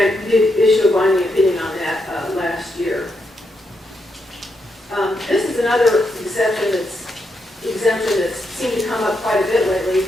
we did issue a binding opinion on that last year. This is another exemption that's seemed to come up quite a bit lately,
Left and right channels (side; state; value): both; normal; correlation 0.81